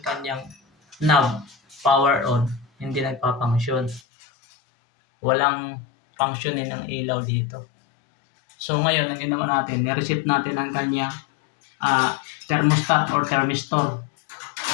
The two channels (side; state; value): right; drops out; at 4.0 s